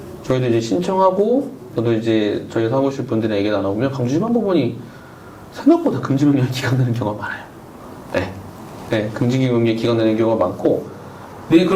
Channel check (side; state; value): both; identical; correlation 1.00